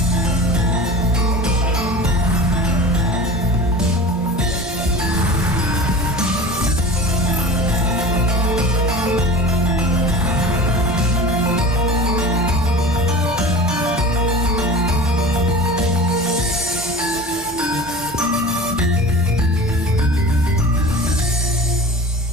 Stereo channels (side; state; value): both; normal; correlation 0.36